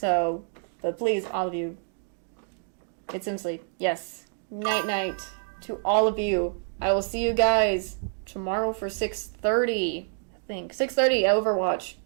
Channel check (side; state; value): left; silent; 60 dB below the other